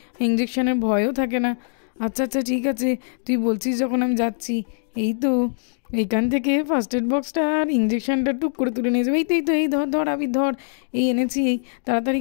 ইঞ্জেকশনের ভয়ও থাকে না। আচ্ছা আচ্ছা ঠিক আছে, তুই বলছিস যখন আমি যাচ্ছি। এই তো এইখান থেকে ফার্স্ট এড বক্সটা আর ইঞ্জেকশনটা টুক করে তুলে নিয়ে যাবে। এই তো এই ধর ধর আবির ধর, এই এনেছি, এই তাড়াতাড়ি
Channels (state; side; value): silent; right; digital silence